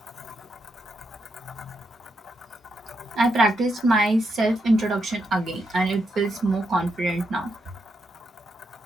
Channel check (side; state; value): both; normal; correlation 0.82